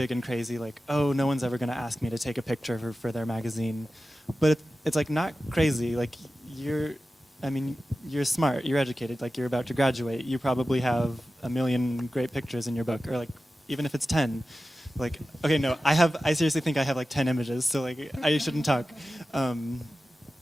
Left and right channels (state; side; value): normal; both; correlation 0.94